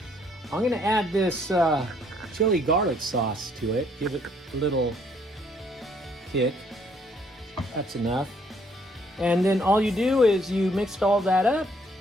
I'm gonna add this chili garlic sauce to it, give it a little kick. That's enough. And then all you do is you mix all that up,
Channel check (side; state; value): both; normal; correlation 0.66